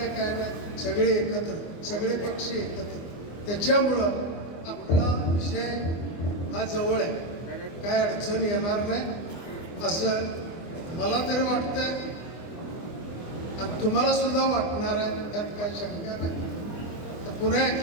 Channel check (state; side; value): late; right; 24 ms